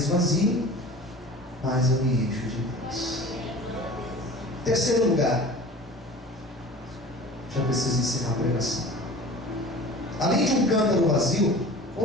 mais eu me encho de Deus. Terceiro lugar, já preciso encerrar a pregação. Além de um cântaro vazio,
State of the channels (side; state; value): both; normal; correlation 0.40